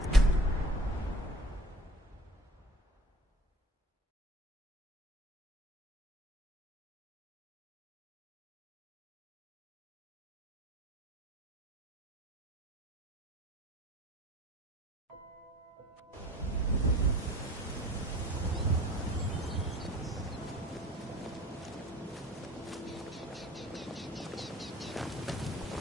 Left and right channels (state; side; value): normal; both; correlation 0.45